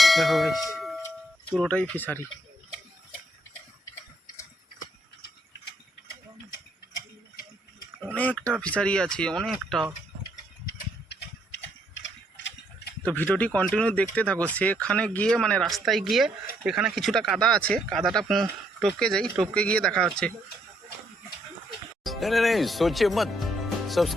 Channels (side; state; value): both; normal; correlation 0.72